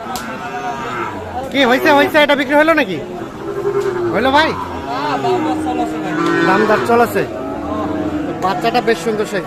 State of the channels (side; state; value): both; identical; correlation 1.00